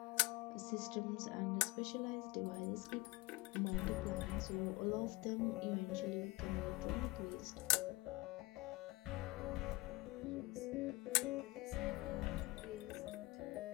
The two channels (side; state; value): right; quieter; 21.2 dB